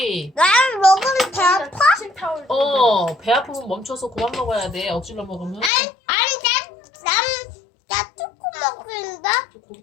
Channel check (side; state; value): right; drops out; at 5.7 s